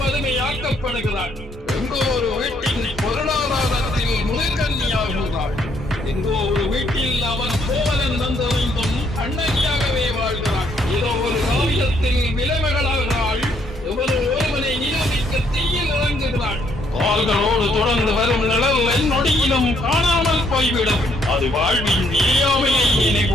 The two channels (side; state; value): both; normal; correlation 0.70